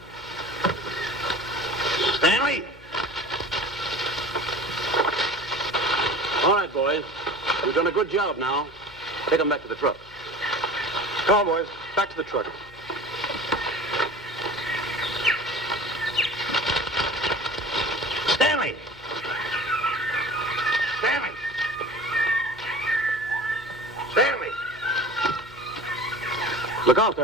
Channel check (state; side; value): noise; left; hum, 23 dB below the sound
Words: Stanley! All right, boys. We've done a good job now. Take them back to the truck. Come on, boys. Back to the truck. Stanley! Stanley! Stanley! Look out